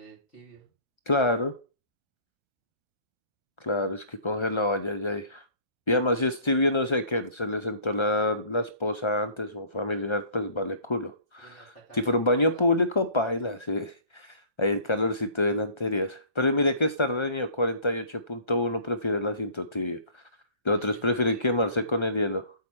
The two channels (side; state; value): right; late; 1.3 ms